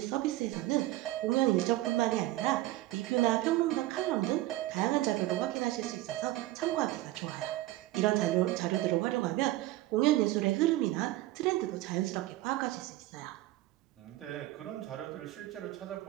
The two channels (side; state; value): left; quieter; 16.6 dB